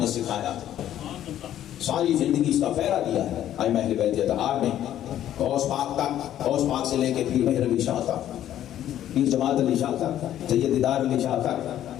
سکھایا تھا۔ ساری زندگی اس کا پہرا دیا ہے ائمہ اہل بیت اتحاد نے، غوث پاک تک، غوث پاک سے لے کے پیر مہر علی شاہ تک، پیر جماعت علی شاہ تک، سید دیدار علی شاہ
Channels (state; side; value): quieter; right; 11.7 dB